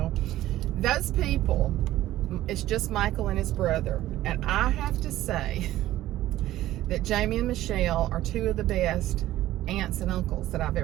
Those people, it's just Michael and his brother. And I have to say that Jamie and Michelle are two of the best aunts and uncles that I've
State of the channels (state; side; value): quieter; left; 14.6 dB